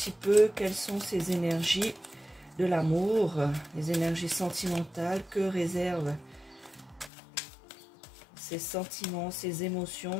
peu quelles sont ces énergies de l'amour, les énergies sentimentales, que réservent ces sentiments, ces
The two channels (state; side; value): drops out; right; at 7.1 s